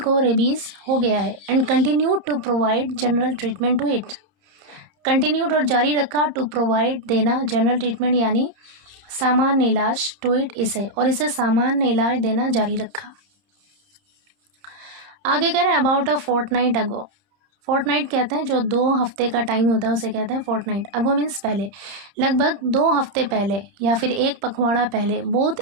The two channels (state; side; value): late; left; 30 ms